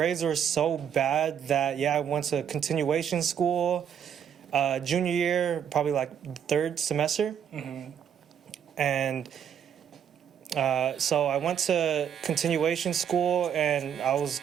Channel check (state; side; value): quieter; left; 8.6 dB